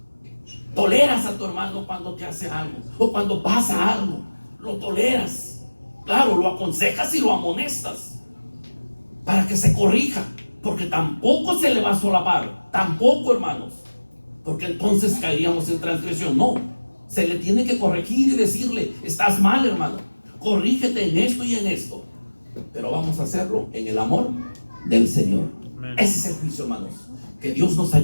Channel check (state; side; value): inverted; both; correlation -1.00